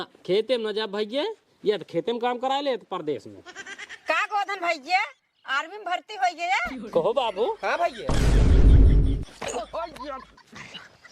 खेते में न जा भैया, या तो खेते में काम करा ले तो परदेश में। का गोधन भैया आर्मी में भर्ती हो गया? कहो बाबू। हाँ भैया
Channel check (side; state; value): both; identical; correlation 1.00